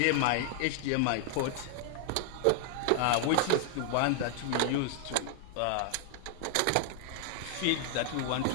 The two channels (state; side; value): different; both; correlation 0.00